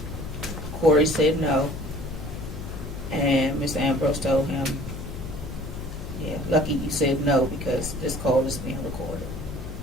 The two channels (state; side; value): noise; left; hum, 10 dB below the sound